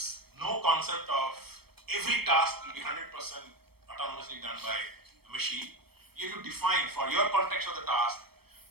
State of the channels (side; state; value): left; late; 0.96 ms